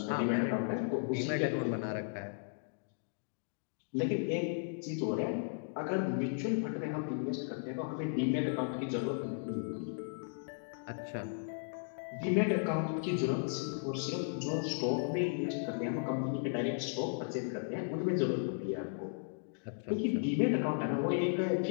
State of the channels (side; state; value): right; silent; digital silence